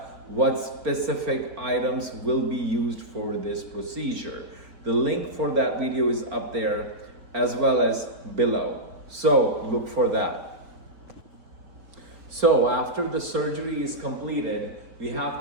What specific items will be used for this procedure. The link for that video is up there as well as below. So look for that. So after the surgery is completed, we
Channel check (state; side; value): late; left; 4.4 ms